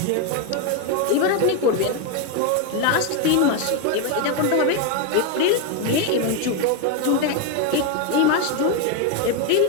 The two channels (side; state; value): both; different; correlation 0.02